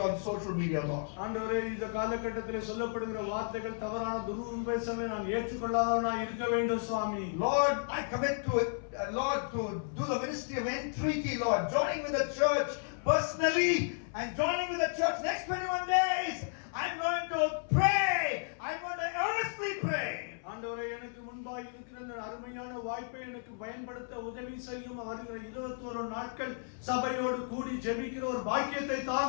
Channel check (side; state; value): right; silent; 56 dB below the other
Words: on social media, Lord. ஆண்டவரே, இந்த காலகட்டத்திலே சொல்லப்படுகிற வார்த்தைகள் தவறான துருபதேசங்களை நான் ஏற்றுக்கொள்ளாதவனாய் இருக்க வேண்டும் சுவாமி. Lord, I commit to it, Lord, to do the ministry of entreaty, Lord, joining with the church personally and joining with the church next 21 days. I'm going to pray. I'm going to earnestly pray. ஆண்டவரே, எனக்கு முன்பாக இருக்கிற இந்த அருமையான வாய்ப்பை எனக்கு பயன்படுத்த உதவி செய்யும். வருகிற 21 நாட்கள் சபையோடு கூடி ஜெபிக்கிற ஒரு பாக்கியத்தை